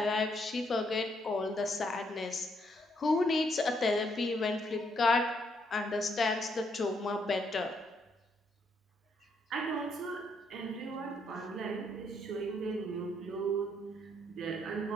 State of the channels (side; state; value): both; normal; correlation 0.73